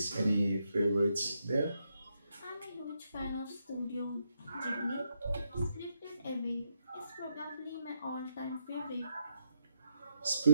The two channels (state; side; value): inverted; both; correlation -0.80